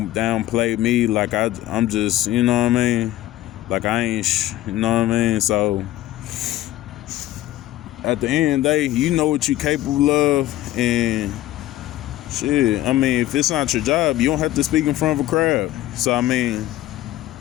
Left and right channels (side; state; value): right; quieter; 15.0 dB